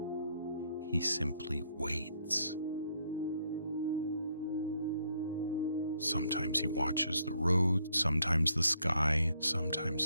He simply waits. Sometimes he watches the road, sometimes the sky,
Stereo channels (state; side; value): inverted; both; correlation -0.71